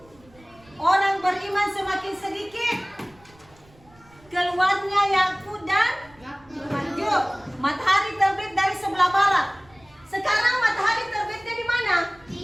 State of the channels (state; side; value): noise; right; rumble, 28 dB below the sound